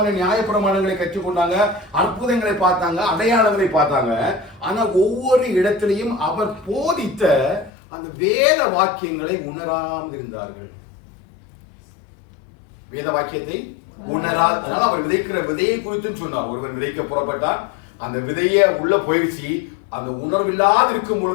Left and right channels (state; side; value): drops out; right; at 7.7 s